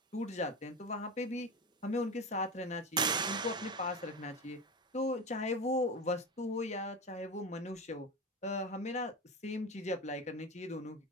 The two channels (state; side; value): normal; both; correlation 0.22